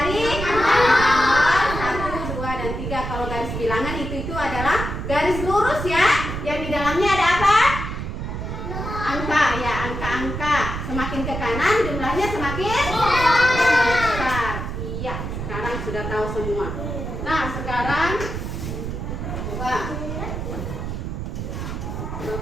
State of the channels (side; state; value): right; noise; rumble, 5 dB below the sound